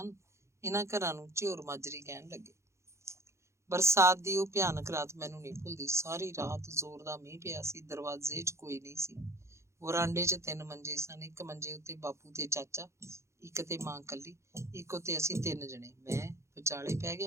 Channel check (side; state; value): left; late; 0.14 ms